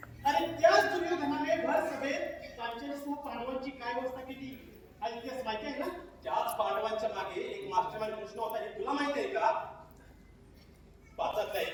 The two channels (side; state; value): both; identical; correlation 1.00